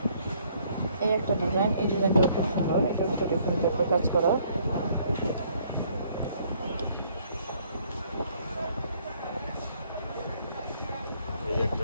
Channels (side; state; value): both; inverted; correlation -0.64